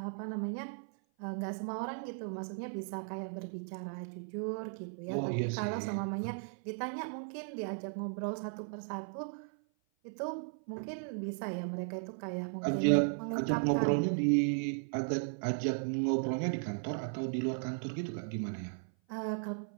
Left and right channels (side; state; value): left; silent; 54 dB below the other